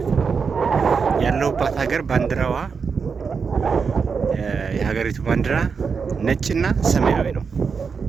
ነው። ያለሁባት ሀገር ባንዲራዋ የሀገሪቱ ባንዲራ ነጭና ሰማያዊ ነው።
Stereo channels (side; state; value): left; quieter; 5.6 dB